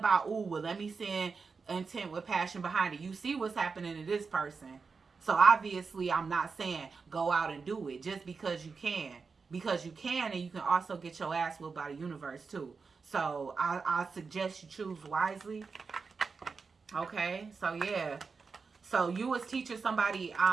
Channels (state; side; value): quieter; left; 4.9 dB